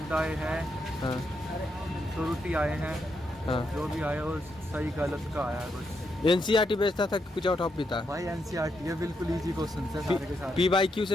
आए हैं। हाँ। त्रुटि आए हैं। हाँ। जो भी आया वो सही गलत का आया है बस। NCERT बेचता था कि कुछ और टॉपिक था? भाई NCERT ये बिल्कुल इजी क्वेश्चन है सारे के सारे। PYQ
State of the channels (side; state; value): both; normal; correlation 0.81